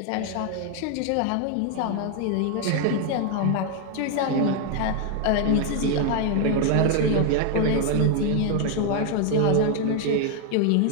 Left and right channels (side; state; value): both; different; correlation 0.01